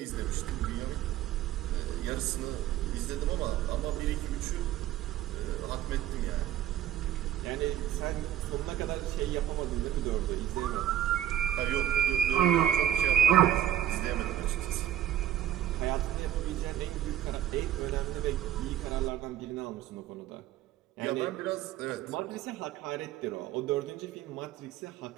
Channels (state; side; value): quieter; left; 11.5 dB